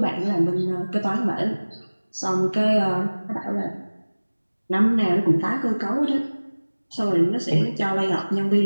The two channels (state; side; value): inverted; both; correlation -1.00